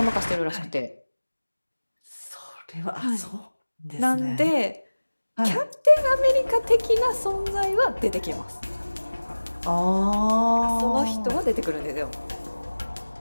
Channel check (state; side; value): inverted; both; correlation -1.00